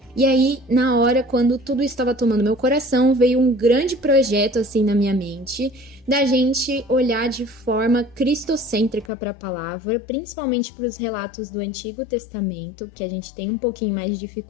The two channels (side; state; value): right; drops out; at 9.1 s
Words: E aí, na hora, quando tudo estava tomando meu coração, veio um grande projeto assim na minha mente, da gente olhar de forma cristocêntrica para a palavra, principalmente para os relatos do Antigo Testamento, que a gente tem um pouquinho mais de